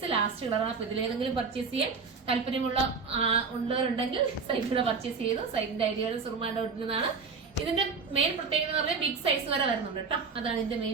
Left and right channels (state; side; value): quieter; left; 5.1 dB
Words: ലാസ്റ്റ് കളറാണ്. അപ്പൊ ഇതിലേതെങ്കിലും പർച്ചേസ് ചെയ്യാൻ താല്പര്യമുള്ള ഉള്ളവരുണ്ടെങ്കിൽ സൈറ്റിലൂടെ പർച്ചേസ് ചെയ്തു. സൈറ്റിന്റെ ഐഡിയ സുറുമാൻ്റെ ഒട്ടുന്നതാണ്. ഇതിന്റെ മെയിൻ പ്രത്യേകത എന്ന് പറഞ്ഞാൽ ബിഗ് സൈസ് വരെ വരുന്നുണ്ട് കേട്ടോ, അതാണ് ഇതിന്റെ